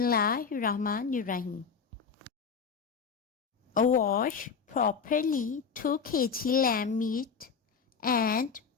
Wash properly 2 kg lamb meat and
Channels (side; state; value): right; quieter; 6.0 dB